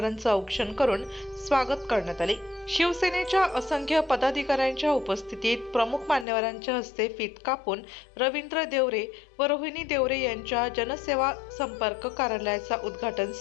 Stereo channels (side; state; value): right; drops out; at 6.2 s